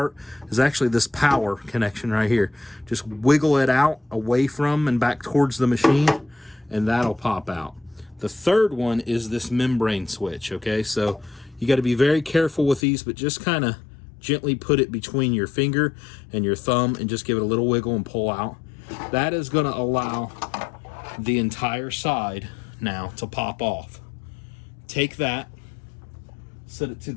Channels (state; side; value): drops out; right; at 12.8 s